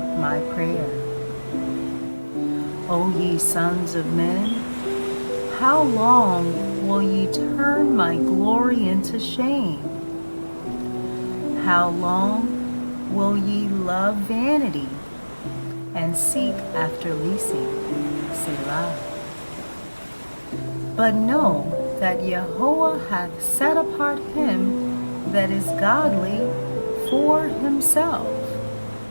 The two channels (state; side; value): inverted; both; correlation -1.00